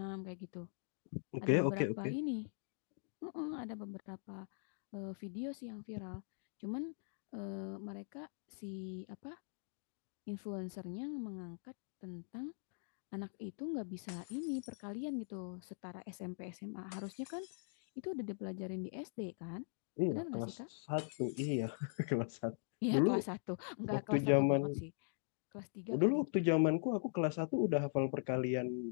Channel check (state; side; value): silent; right; digital silence